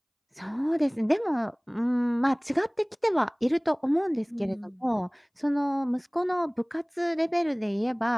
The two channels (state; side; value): identical; both; correlation 1.00